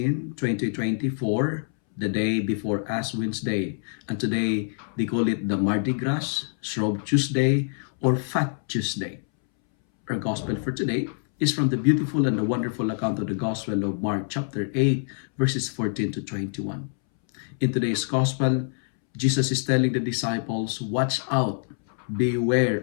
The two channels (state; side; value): silent; right; 61 dB below the other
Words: 2024, the day before Ash Wednesday. And today, they call it the Mardi Gras, Shrove Tuesday, or Fat Tuesday. Our Gospel for today is from the beautiful and the wonderful account of the Gospel of Mark chapter 8, verses 14 to 21. In today's gospel, Jesus is telling the disciples, watch out,